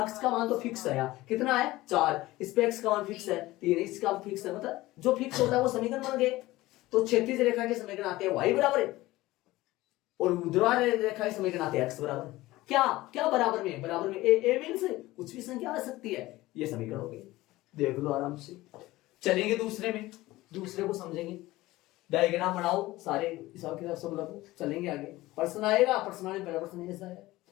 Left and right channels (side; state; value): right; quieter; 18.2 dB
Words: का मान तो फिक्स है। यहाँ कितना है? 4, इस पे x का मान फिक्स है 3, इसका फिक्स है, मतलब जो फिक्स होता है वो समीकरण बन गए। तो क्षैतिज रेखा के समीकरण आते हैं y बराबर है, और ऊर्ध्वाधर रेखा के समीकरण आते हैं x बराबर क्या बराबर में? बराबर में a मीन्स कुछ भी संख्या आ सकती है। ये समीकरण हो गए, देख लो आराम से। चलेंगे दूसरे को समझेंगे, डायग्राम बनाओ सारे हिसाब किताब सब लगो, चलेंगे आगे। प्रश्न आएगा, प्रश्न आने पहला प्रश्न ऐसा है,